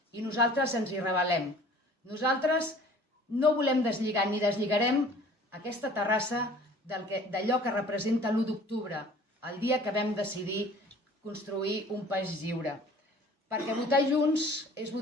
i nosaltres ens hi rebel·lem. Nosaltres no volem deslligar ni deslligarem aquesta Terrassa d'allò que representa l'1 d'octubre, el dia que vam decidir construir un país lliure. Perquè votar junts és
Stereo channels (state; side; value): normal; both; correlation 0.49